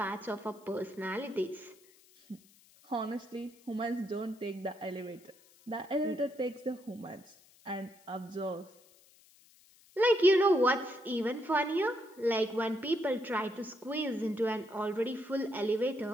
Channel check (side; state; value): left; noise; hiss, 28 dB below the sound